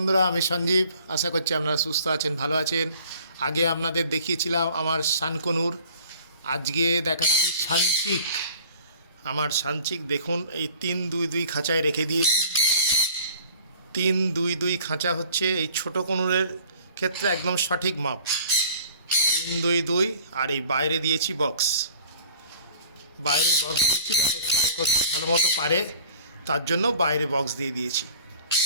আমি সঞ্জীব। আশা করছি আপনারা সুস্থ আছেন, ভালো আছেন। আগে আপনাদের দেখিয়েছিলাম আমার শানকনুর, আজকে দেখাচ্ছি সানচিক। আমার সানচিক দেখুন, এই 3-2-2 খাঁচায় রেখে দিয়েছি। 3-2-2 খাঁচা হচ্ছে এই ছোট কনুরের ক্ষেত্রে একদম সঠিক মাপ। 3-2-2 আর এই বাইরে দিয়েছি বক্স। বাইরে বক্স দিয়েছি যাতে ফ্লাই করতে ভালো মতো পারে, তার জন্য বাইরে বক্স দিয়ে দিয়েছি।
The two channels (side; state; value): both; inverted; correlation -0.50